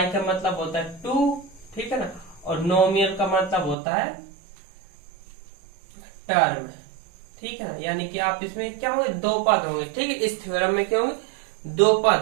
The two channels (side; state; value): left; drops out; at 3.8 s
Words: का मतलब होता है टू, ठीक है ना, और नोमियल का मतलब होता है टर्म, ठीक है ना। यानी कि आप इसमें क्या होंगे, दो पद होंगे, ठीक है। इस थ्योरम में क्या होंगे, दो